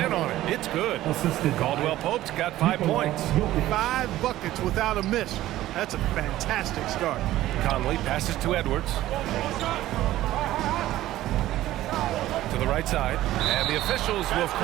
on it. It's good. Caldwell Pope's got 5 points. 5 buckets without a miss. That's a fantastic start. Conley passes to Edwards. To the right side. And the officials will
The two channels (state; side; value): quieter; left; 14.9 dB